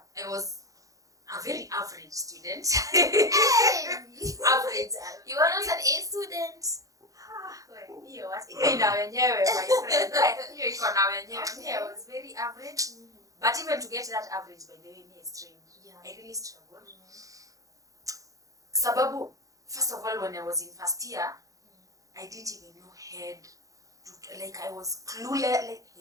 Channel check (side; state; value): left; late; 0.16 ms